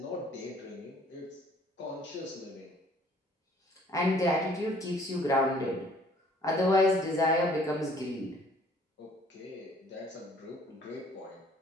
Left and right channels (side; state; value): both; normal; correlation 0.58